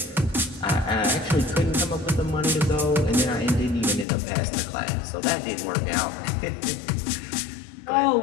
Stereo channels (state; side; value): drops out; right; at 4.0 s